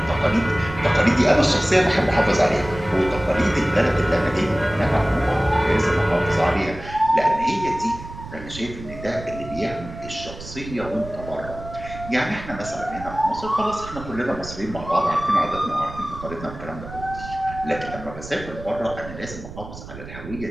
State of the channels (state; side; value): noise; right; rumble, 13 dB below the sound